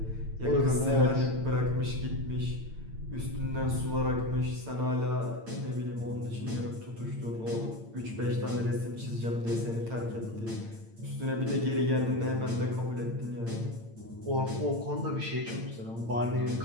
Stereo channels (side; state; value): left; late; 8.8 ms